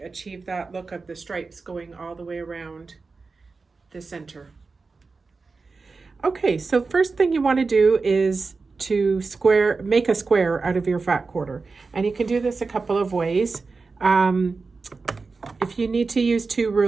achieve that look of the stripes going all the way around the center. Okay, so first thing you want to do is to make a square out of your fat quarter, and you can do this a couple of ways. If you need to use two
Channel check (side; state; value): left; quieter; 4.2 dB